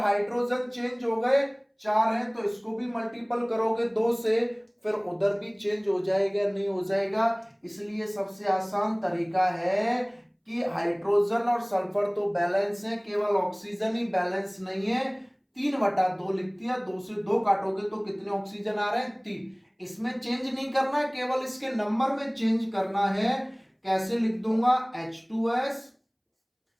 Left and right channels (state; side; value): identical; both; correlation 1.00